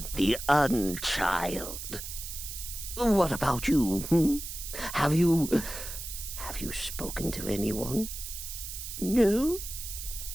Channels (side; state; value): right; noise; hiss, 8 dB below the sound